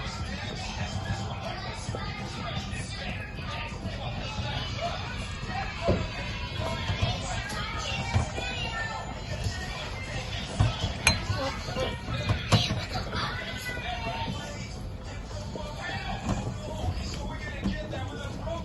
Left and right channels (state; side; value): identical; both; correlation 1.00